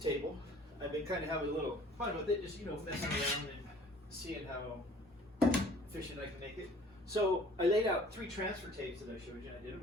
I've been kind of having a little fun with it, just messing around and seeing how efficient I can make it. So I laid out 3 transfer tapes that I showed you, and I did them.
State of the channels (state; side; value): normal; both; correlation 0.51